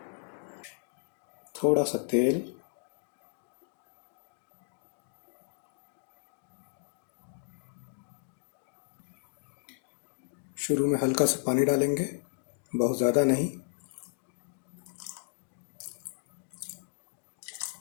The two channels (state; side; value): silent; right; digital silence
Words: थोड़ा सा तेल, शुरू में हल्का सा पानी डालेंगे, बहुत ज़्यादा नहीं।